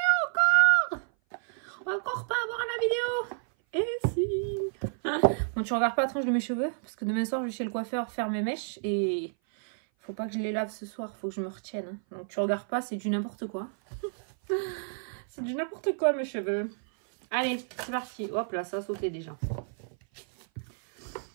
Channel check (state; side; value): silent; left; 56 dB below the other